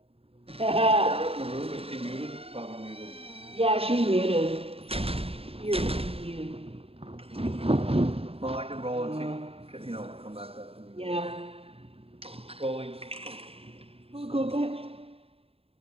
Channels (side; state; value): left; late; 0.28 ms